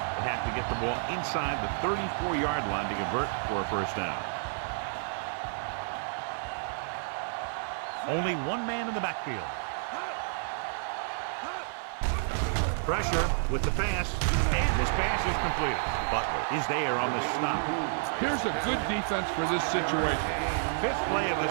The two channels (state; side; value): silent; left; digital silence